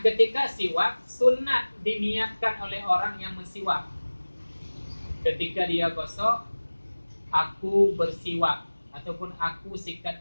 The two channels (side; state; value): both; inverted; correlation -1.00